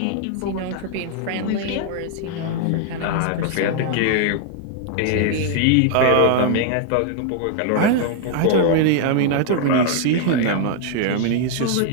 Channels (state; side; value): different; both; correlation 0.00